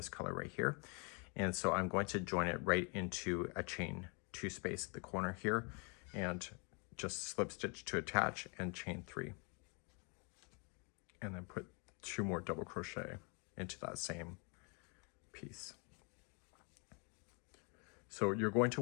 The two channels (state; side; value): quieter; right; 34.9 dB